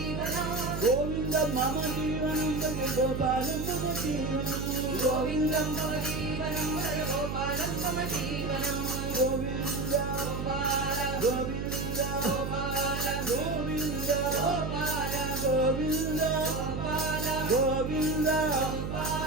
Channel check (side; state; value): right; noise; hum, 4 dB below the sound